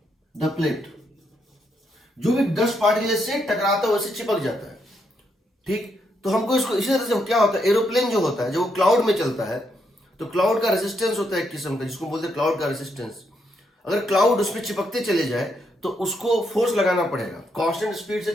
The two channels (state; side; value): normal; both; correlation 0.78